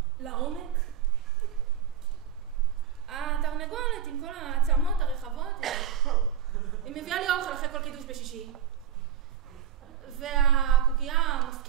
לעומק, התרנגולת עם כל העצמות הרחבות היא מביאה לי אוכל אחרי כל קידוש בשישי, והקוקייה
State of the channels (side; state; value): left; quieter; 8.8 dB